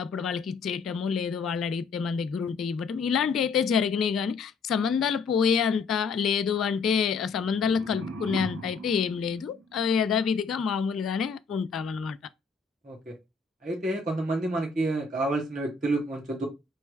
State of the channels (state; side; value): quieter; right; 4.7 dB